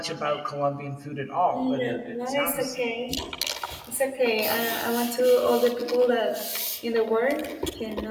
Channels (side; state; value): both; identical; correlation 1.00